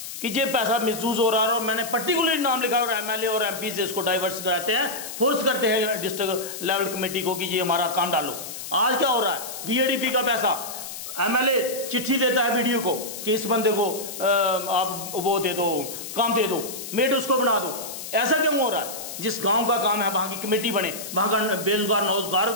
कि ये पैसा मिसयूज हो रहा है, और मैंने पर्टिकुलरली नाम लिखा और एमएलए और एमपी से इसको डाइवर्स कराते हैं, फोर्स करते हैं डिस्ट्रिक्ट लेवल कमेटी को कि ये हमारा काम डालो। आज क्या हो रहा है, बीएडीपी का पैसा एमएलए चिट्ठी देता है बीडीओ को कि इस बंदे को आप वो दे दो, काम दे दो, मेड उसको बना दो। ऐसा क्यों हो रहा है? जिस गांव का काम है वहां की कमेटी बने, वहां का बेरोजगार नौजगार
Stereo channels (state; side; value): noise; left; hiss, 9 dB below the sound